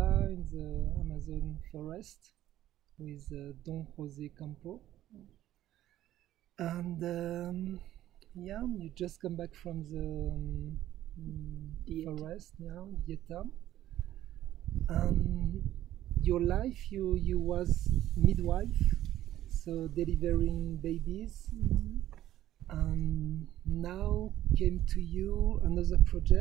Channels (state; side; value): quieter; left; 13.2 dB